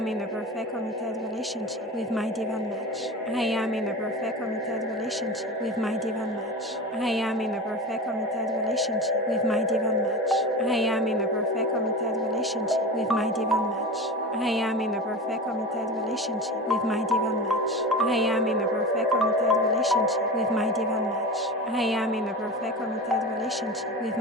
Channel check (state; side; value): normal; both; correlation 0.29